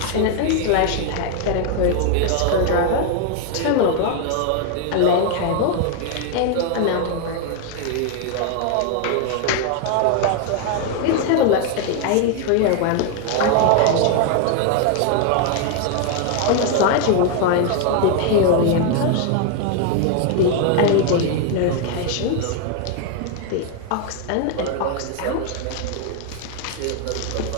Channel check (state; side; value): different; both; correlation 0.01